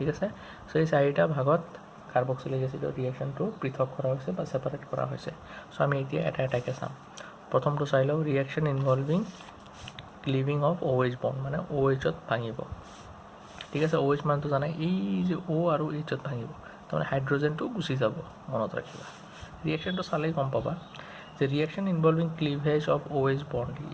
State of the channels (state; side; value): identical; both; correlation 1.00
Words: আছে। চ' এই 4টা ভাগত কাৰ্বক্সিলিক এচিডৰ ৰিয়েকশ্যনটো পৃথক কৰা হৈছে বা ছেপাৰেট কৰা হৈছে। চ' আমি এতিয়া এটা এটাকৈ চাম। প্ৰথমটো চাই লওঁ, reaction involving cleaving of OH bond, মানে OHত ভাঙিব, ঠিক আছে। OH মানটো জানাই, এই যে O আৰু Hত ভাঙিব, তাৰমানে হাইড্ৰজেনটো গুচি যাব, মনত ৰাখিবা। ৰিয়েকশ্যনটো চালেই গম পাবা যে reaction involving cleavage of OH bond,